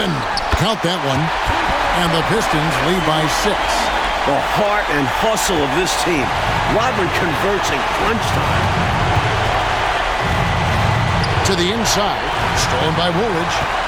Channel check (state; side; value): identical; both; correlation 1.00